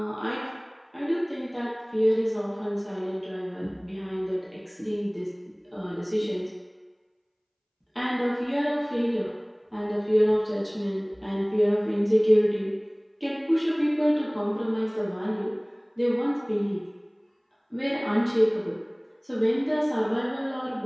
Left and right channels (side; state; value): both; identical; correlation 1.00